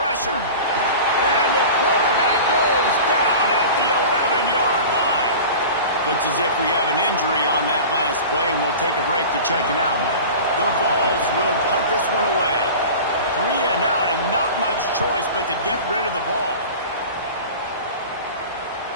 And the quarterback goes down at the 11-yard line. Looks as if we have an injury on that last play, and we'll take a break to check him out. The Vols will punt this one away. 3 and out, and not much choice but to get rid of the ball.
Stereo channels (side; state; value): both; inverted; correlation -0.36